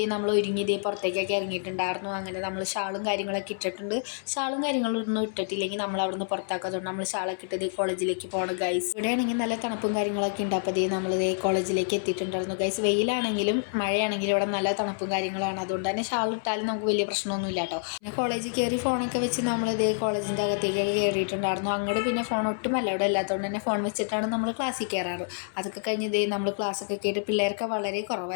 നമ്മൾ ഒരുങ്ങി ഇതേ പുറത്തേക്കൊക്കെ ഇറങ്ങിയിട്ടുണ്ടായിരുന്നു. അങ്ങനെ നമ്മൾ ഷാളും കാര്യങ്ങളൊക്കെ ഇട്ടിട്ടുണ്ട്. ഷാളും കാര്യങ്ങളൊന്നും ഇട്ടിട്ടില്ലെങ്കിൽ നമ്മൾ അവിടെ നിന്ന് പുറത്താക്കാത്തതുകൊണ്ട് നമ്മൾ ഷാളൊക്കെ ഇട്ട് കോളേജിലേക്ക് പോകണം ഗൈസ്. ഇവിടെയാണെങ്കിൽ നല്ല തണുപ്പും കാര്യങ്ങളൊക്കെ ഉണ്ട്. അപ്പോൾ നമ്മൾ കോളേജിലേക്ക് എത്തിയിട്ടുണ്ടായിരുന്നു ഗൈസ്. വെയിലാണെങ്കിലും മഴയാണെങ്കിലും ഇവിടെ നല്ല തണുപ്പും കാര്യങ്ങളാണ്. അതുകൊണ്ട് തന്നെ ഷാൾ ഇട്ടാലും നമുക്ക് വലിയ പ്രശ്നമൊന്നുമില്ല കേട്ടോ. പിന്നെ കോളേജിൽ കയറി ഫോണൊക്കെ വെച്ച് നമ്മൾ കോളേജിൻ്റെ അകത്തേക്കൊക്കെ കയറിയിട്ടുണ്ടായിരുന്നു. അങ്ങോട്ട് പിന്നെ ഫോൺ ഒട്ടും അലൗഡ് അല്ലാത്തതുകൊണ്ട് തന്നെ ഫോൺ വെച്ചിട്ടാണ് നമ്മൾ ക്ലാസ്സിൽ കയറാറ്. അതൊക്കെ കഴിഞ്ഞ് നമ്മൾ ക്ലാസ്സൊക്കെ കേട്ട് പിള്ളേർക്ക് വളരെ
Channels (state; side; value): silent; right; 60 dB below the other